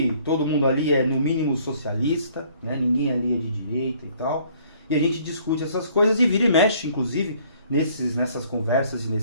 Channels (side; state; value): both; inverted; correlation -0.59